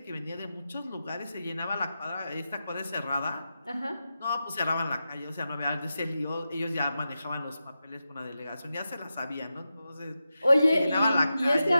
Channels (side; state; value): both; inverted; correlation -0.90